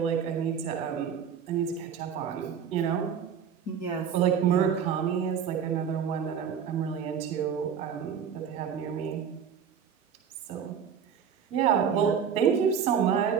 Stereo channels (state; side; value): quieter; left; 7.6 dB